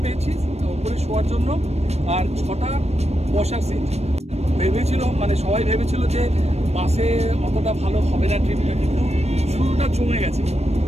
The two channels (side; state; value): left; late; 0.31 ms